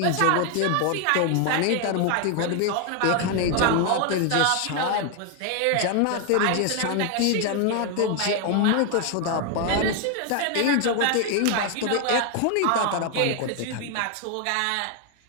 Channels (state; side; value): different; both; correlation 0.01